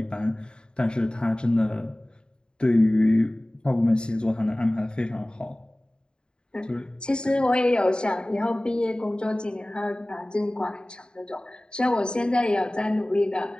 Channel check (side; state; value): right; late; 0.049 ms